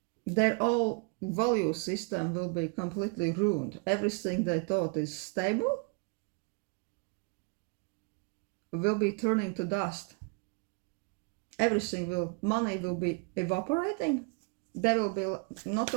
Their whole value system will be completely ruined. Everything they thought is stable will be turning to dust. Money will be evaporating. They will be not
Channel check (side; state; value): left; quieter; 33.5 dB